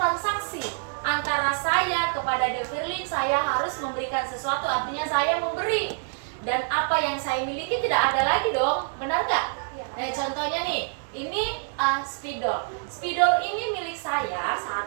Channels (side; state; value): left; silent; 61 dB below the other